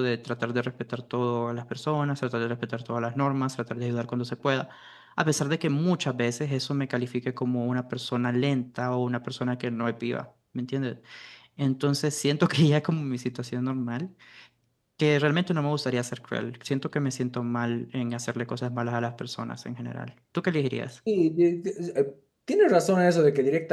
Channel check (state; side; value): identical; both; correlation 1.00